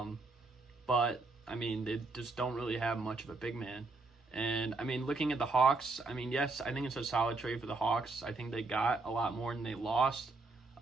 they just don't really have much of a big man. And, looking at the Hawks, yes, I think it's a solid trade for the Hawks. I think they got a lot more than they lost,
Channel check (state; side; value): quieter; left; 3.5 dB